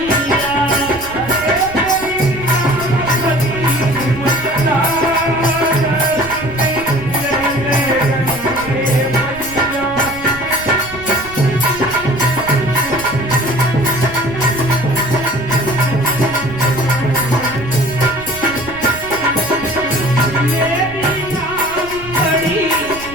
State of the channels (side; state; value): right; noise; rumble, 16 dB below the sound